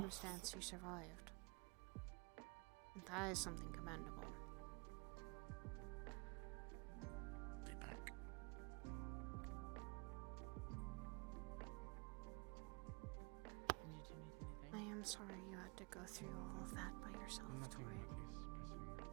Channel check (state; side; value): quieter; left; 30.1 dB